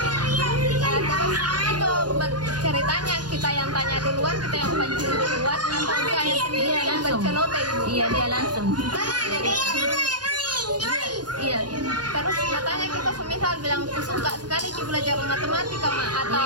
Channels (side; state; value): left; late; 0.70 ms